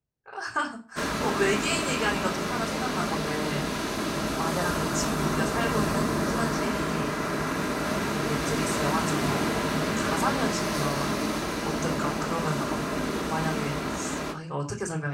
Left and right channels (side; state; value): both; identical; correlation 1.00